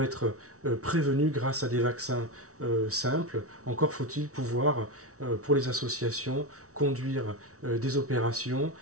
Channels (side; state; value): left; late; 0.65 ms